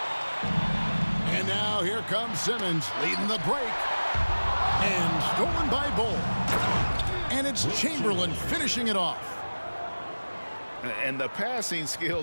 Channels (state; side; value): inverted; both; correlation -1.00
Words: And now here comes Simmons leading the break. And stolen by Bull. And it's Chamberlain finishing it off. And the passing